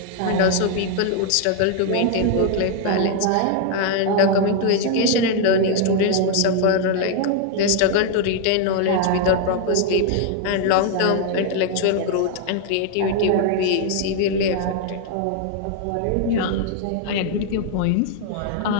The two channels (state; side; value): different; both; correlation 0.00